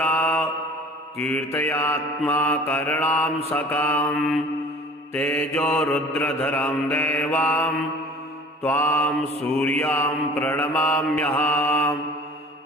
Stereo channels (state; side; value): normal; both; correlation 0.45